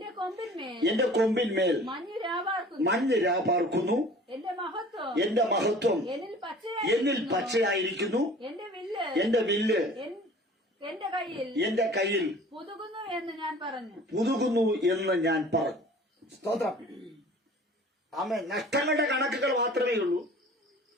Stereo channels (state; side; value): normal; both; correlation 0.46